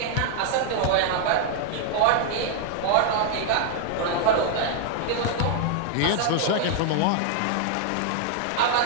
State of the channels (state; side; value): different; both; correlation 0.00